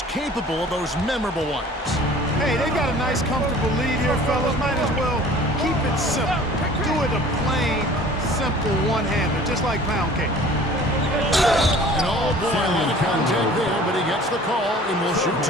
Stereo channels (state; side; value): normal; both; correlation 0.47